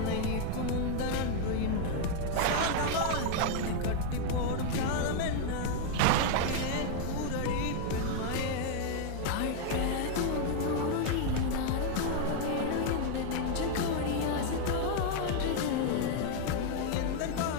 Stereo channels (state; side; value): different; both; correlation 0.00